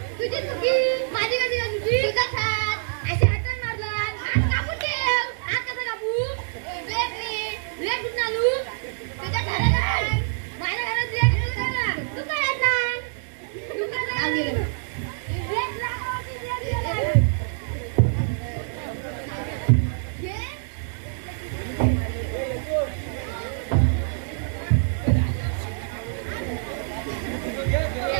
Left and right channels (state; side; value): silent; left; digital silence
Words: तुझी चुकी माझी कधी तुझी तुझाच हात असे हातात मारला. हात कापून ठेव. हात कसा कापू? ब्लेड कुठून आणू? तुझ्या घरात माझ्या घरात ब्लेड ना तू काय येत नाही. तू काय